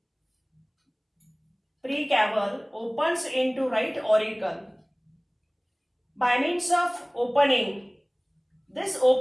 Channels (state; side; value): identical; both; correlation 1.00